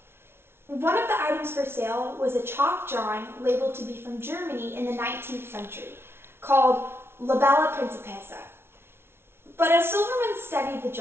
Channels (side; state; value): left; late; 0.12 ms